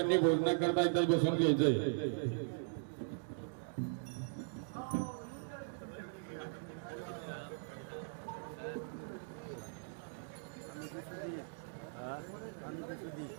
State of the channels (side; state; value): left; silent; digital silence